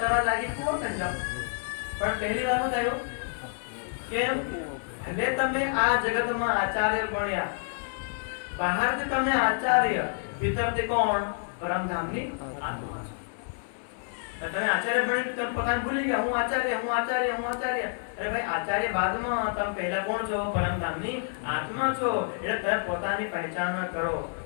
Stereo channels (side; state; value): right; silent; 59 dB below the other